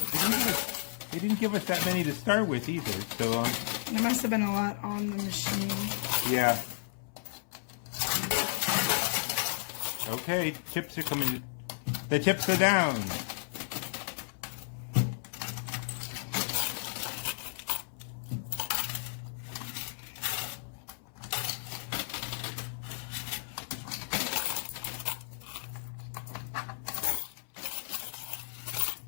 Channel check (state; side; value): silent; right; 56 dB below the other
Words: They didn't give us that many to start with either, so There must have been a lot on the machine. yeah. Okay, chips are coming. The chips are down.